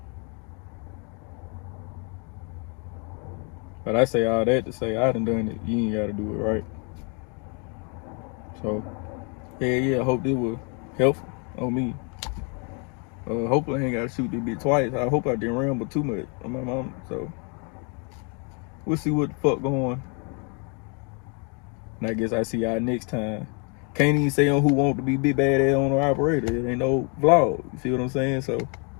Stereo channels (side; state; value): right; quieter; 36.3 dB